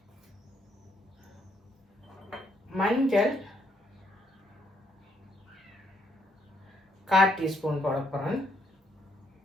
மஞ்சள் 1/4 டீஸ்பூன் போட போகிறேன்.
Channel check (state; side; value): normal; both; correlation 0.72